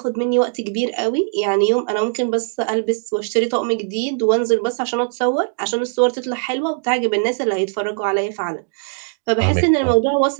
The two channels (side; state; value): left; silent; digital silence